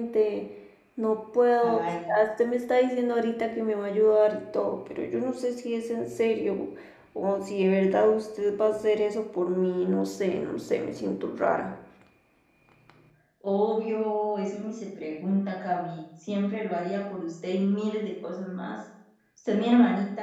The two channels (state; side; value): identical; both; correlation 1.00